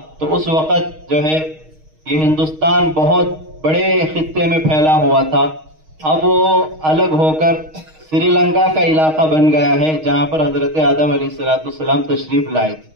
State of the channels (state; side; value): late; left; 6.4 ms